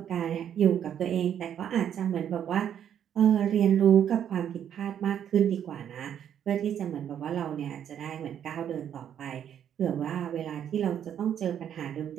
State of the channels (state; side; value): quieter; left; 9.4 dB